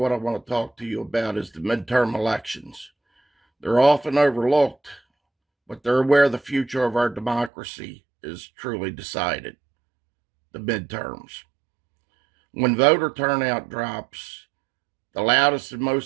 I want to talk to you about is the midterm elections. They're often overlooked, but they're where the future of our democracy is truly decided. The midterms. When voter turnout drops, the loudest and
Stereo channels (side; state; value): left; drops out; at 7.5 s